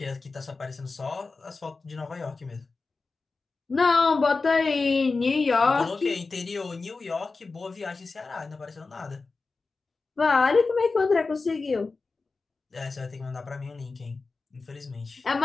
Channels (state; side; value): quieter; right; 4.0 dB